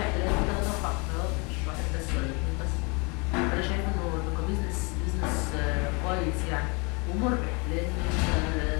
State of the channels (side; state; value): right; quieter; 30.5 dB